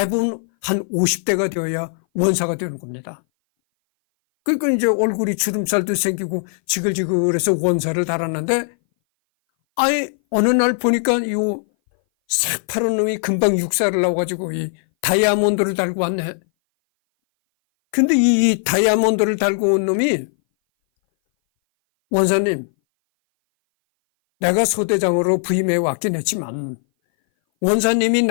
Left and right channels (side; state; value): right; silent; 59 dB below the other